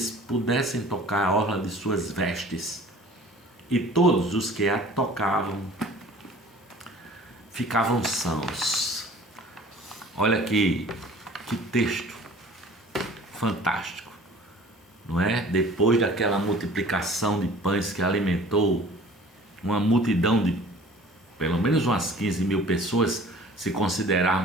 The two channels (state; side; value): normal; both; correlation 0.48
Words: pudessem tocar a orla de suas vestes. E todos os que a tocavam ficavam sãos. Olha que texto fantástico, não é? Depois daquela multiplicação de pães que alimentou uma multidão de pelo menos umas 15.000 pessoas, se